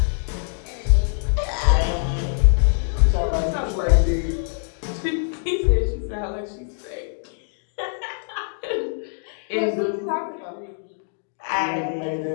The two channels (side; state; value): right; silent; digital silence